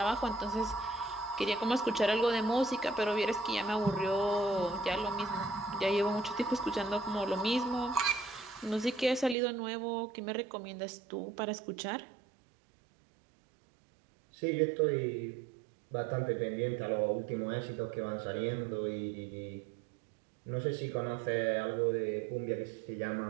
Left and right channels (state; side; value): drops out; left; at 9.3 s